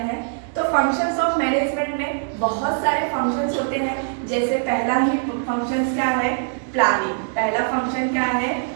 हैं। तो फंक्शंस ऑफ मैनेजमेंट में बहुत सारे फंक्शंस होते हैं। जैसे पहला ही फंक्शंस क्या है, प्लानिंग। पहला फंक्शन क्या है,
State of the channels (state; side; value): silent; left; digital silence